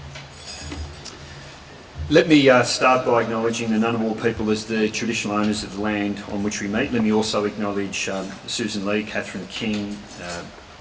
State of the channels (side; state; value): both; identical; correlation 1.00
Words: Let me start by acknowledging the Ngunnawal people as the traditional owners of the land on which we meet. Let me also acknowledge Susan Lee, Catherine King,